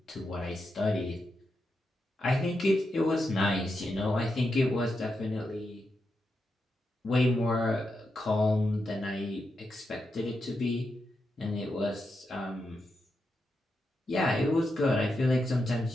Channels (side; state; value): both; normal; correlation 0.86